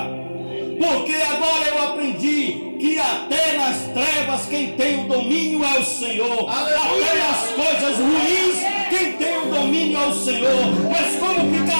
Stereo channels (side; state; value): both; inverted; correlation -1.00